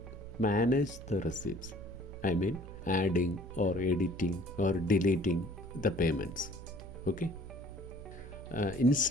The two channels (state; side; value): noise; right; hum, 14 dB below the sound